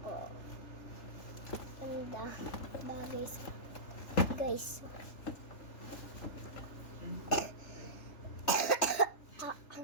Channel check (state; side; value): late; right; 3.4 ms